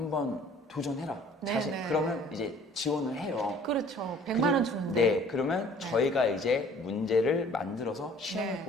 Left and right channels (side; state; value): both; normal; correlation 0.53